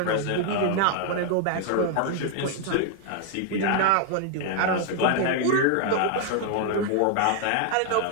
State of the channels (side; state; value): both; different; correlation 0.00